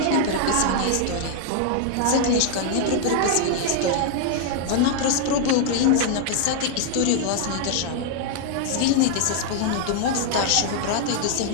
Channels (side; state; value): both; different; correlation 0.00